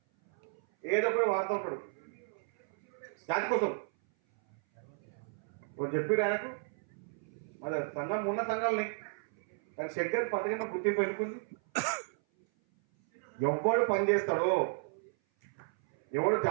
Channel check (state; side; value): silent; left; 55 dB below the other